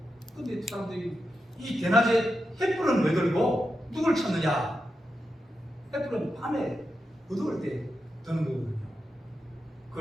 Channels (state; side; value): normal; both; correlation 0.88